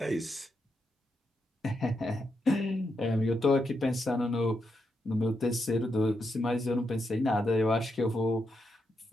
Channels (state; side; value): normal; both; correlation 0.83